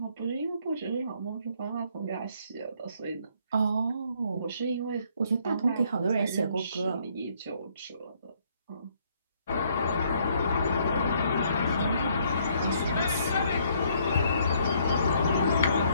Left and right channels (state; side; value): inverted; both; correlation -0.67